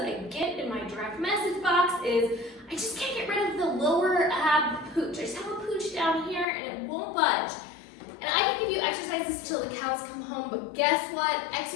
I get in my direct message box is, I just can't get rid of the lower ab pooch. I just have a pooch down here and it won't budge. And I can give you exercises till the cows come home, but guess what?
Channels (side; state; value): right; drops out; at 6.5 s